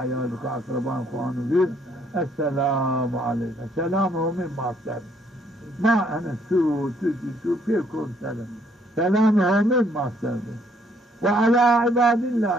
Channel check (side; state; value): both; normal; correlation 0.67